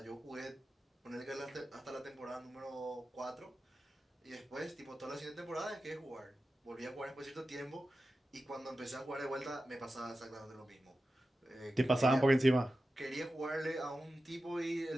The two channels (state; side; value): normal; both; correlation 0.93